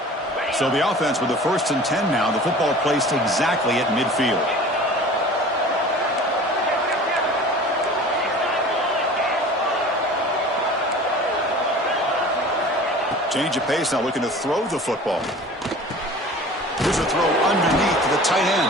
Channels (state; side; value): normal; both; correlation 0.42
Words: So the offense with the 1st and 10 now. The football placed exactly at midfield. Change of pace now, looking to throw the football. Here's a throw underneath to the tight